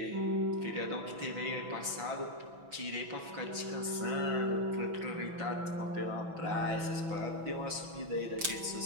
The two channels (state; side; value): late; left; 6.0 ms